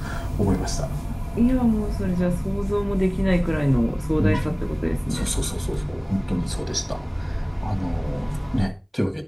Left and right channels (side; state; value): both; identical; correlation 1.00